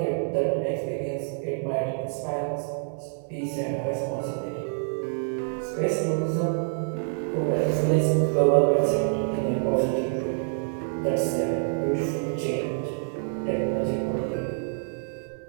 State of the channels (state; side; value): silent; left; digital silence